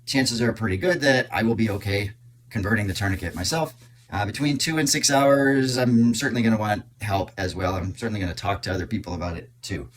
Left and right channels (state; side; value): identical; both; correlation 1.00